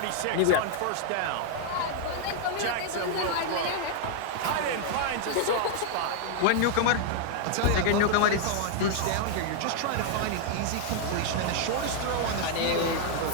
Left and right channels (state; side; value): different; both; correlation 0.00